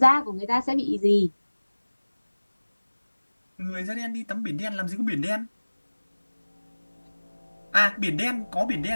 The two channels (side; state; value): both; inverted; correlation -1.00